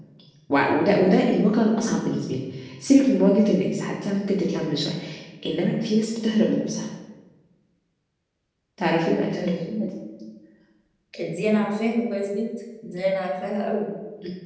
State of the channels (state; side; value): identical; both; correlation 1.00